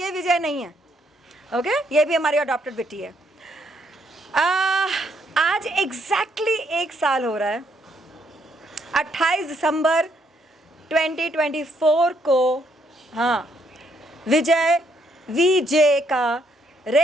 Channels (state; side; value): normal; both; correlation 0.72